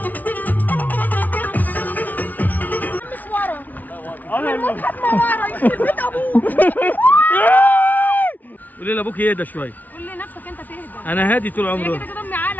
قولي لابوك يهدى شويه. قول لنفسك انت تهدى. انا هادي طول عمري. كده كده امي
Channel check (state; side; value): late; right; 0.078 ms